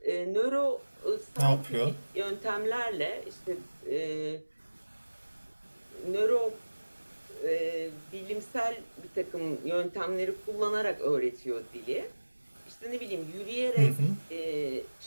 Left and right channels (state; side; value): inverted; both; correlation -1.00